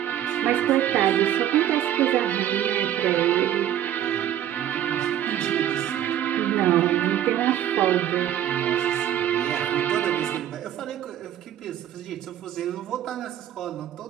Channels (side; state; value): left; quieter; 11.2 dB